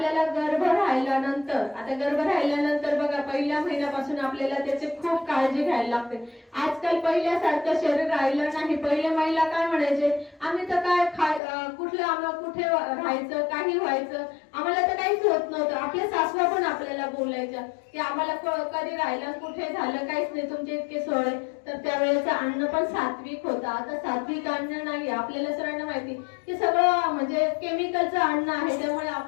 गर्भ राहिल्यानंतर बघा पहिल्या महिन्यापासून आपल्याला त्याची खूप काळजी घ्यायला लागते. आजकाल पहिल्यासारखं शरीर राहिलं नाही. पहिल्या महिला काय म्हणायचे, आम्ही तर काय कुठे राहायचं, काही व्हायचं, आम्हाला तर काहीच होत नव्हतं. आपल्या सासवा पण आपल्याला बोलायच्या की आम्हाला कधी राहिलं कुठे झालं काहीच नाही, तुमचे इतके सोय. तर त्यावेळेचं अन्न पण सात्विक होतं. आता सात्विक अन्न नाही. आपल्याला सगळ्यांना माहिती की सगळं म्हणजे केमिकलचं अन्न आहे. त्यामुळे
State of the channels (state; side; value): drops out; right; at 11.4 s